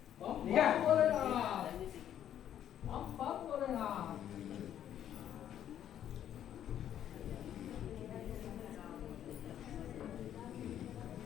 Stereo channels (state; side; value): quieter; right; 10.5 dB